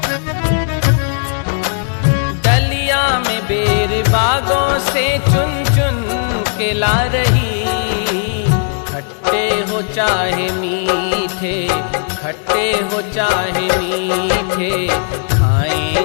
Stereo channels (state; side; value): silent; right; 57 dB below the other